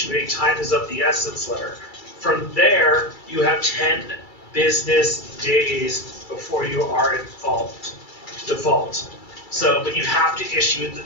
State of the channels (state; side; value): late; right; 2.3 ms